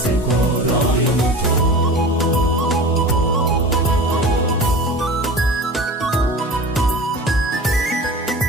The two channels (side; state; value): both; normal; correlation 0.35